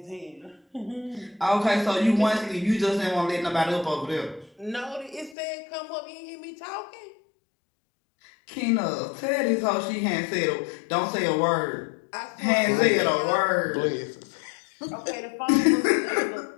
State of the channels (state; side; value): drops out; right; at 5.4 s